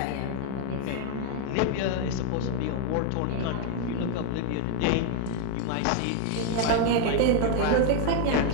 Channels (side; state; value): both; different; correlation 0.01